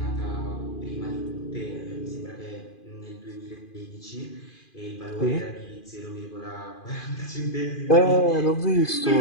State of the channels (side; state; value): right; late; 2.4 ms